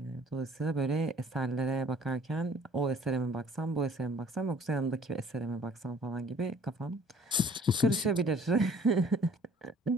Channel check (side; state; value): both; normal; correlation 0.54